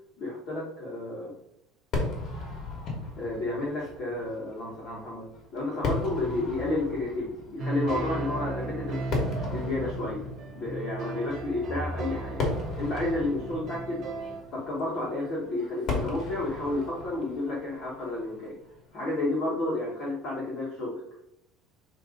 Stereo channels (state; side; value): normal; both; correlation 0.54